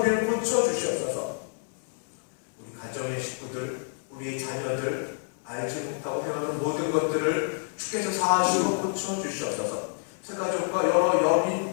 우리를 고쳐주시옵소서. 우리 가정의 식구들, 우리의 자녀들 알지 못하고 행하는 모든 것들을 주께서 사하시고 고쳐주시옵소서. 새가족과 여러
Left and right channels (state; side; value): silent; right; 59 dB below the other